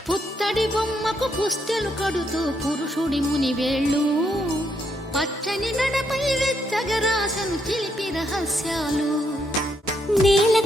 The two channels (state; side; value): normal; both; correlation 0.76